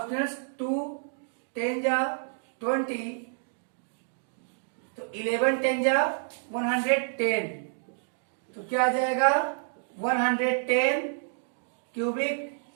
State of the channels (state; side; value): silent; left; digital silence